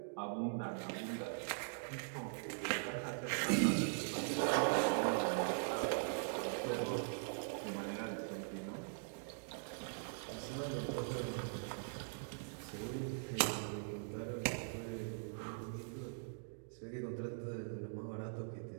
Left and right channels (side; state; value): left; silent; digital silence